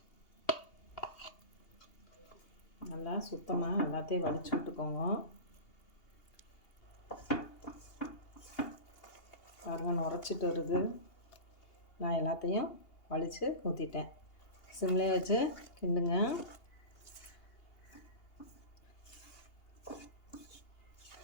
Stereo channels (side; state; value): right; late; 2.8 ms